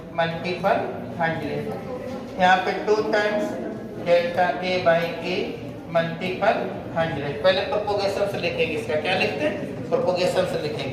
multiple 100, यहाँ पे 2 times delta a by a multiple 100। पहले प्रोपोगेशन से लिखेंगे, इसका क्या लिखते हैं, प्रोपोगेशन से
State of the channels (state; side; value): identical; both; correlation 1.00